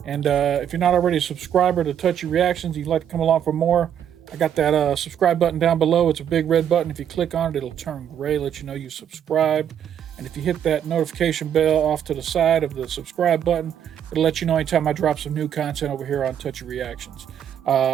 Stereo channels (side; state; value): left; quieter; 9.2 dB